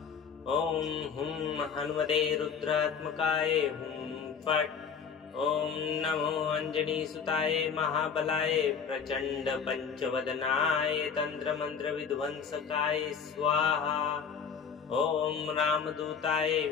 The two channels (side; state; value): right; quieter; 6.5 dB